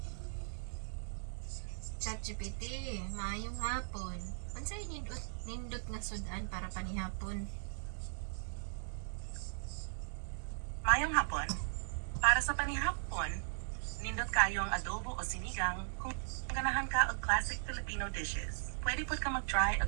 ChatGPT, maayong hapon. Unsay nindot nga sudan para panihapon? Mayong hapon. Para sa panihapon, nindot kayo ang adobo o sinigang kung ganahan ka og classic Filipino dishes. Pwede pod ka mag-try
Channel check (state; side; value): silent; left; 52 dB below the other